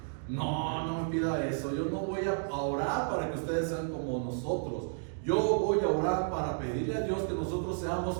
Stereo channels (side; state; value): left; silent; digital silence